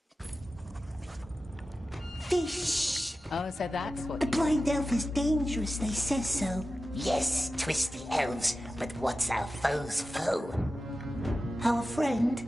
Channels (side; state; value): both; normal; correlation 0.94